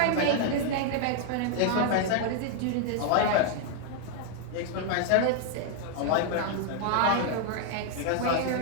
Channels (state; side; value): different; both; correlation 0.00